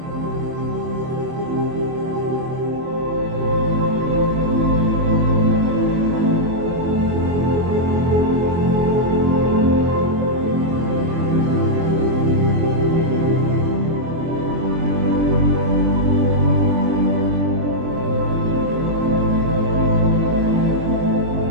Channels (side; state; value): left; late; 24 ms